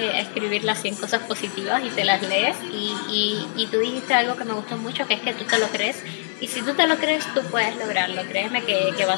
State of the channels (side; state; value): right; silent; 63 dB below the other